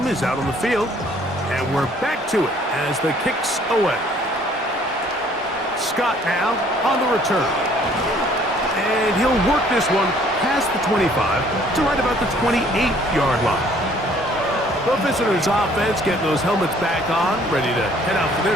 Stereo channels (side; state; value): both; normal; correlation 0.59